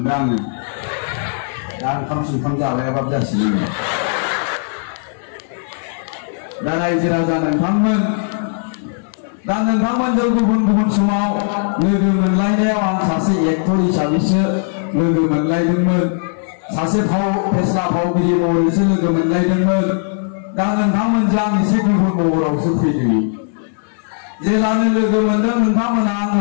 आङो। दा ओंखाम संखाम जालायाबाबो जासिगोन। दा रायजो राजा नोंथांमोन, दा नोंथांमोनजों गुबुन समाव लोगो मोनलायनायाव आं सासे एक्टर हिसाबैसो लोगो मोनलायदोंमोन, सासे फेस्ला फावगिरि महरैसो लोगो मोनलायदोंमोन। दा नोंथांमोनजों आं एसे गुबुन महरावसो फैदों। जेलानो लोगो मोनदों नोंथांमोना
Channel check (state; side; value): silent; right; digital silence